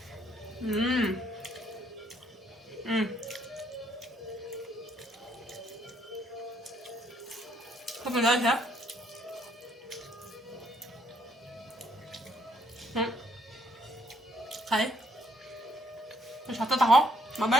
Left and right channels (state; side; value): normal; both; correlation 0.69